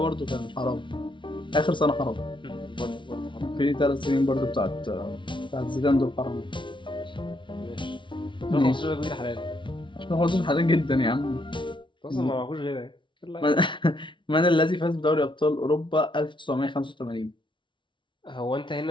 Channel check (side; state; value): right; late; 0.24 ms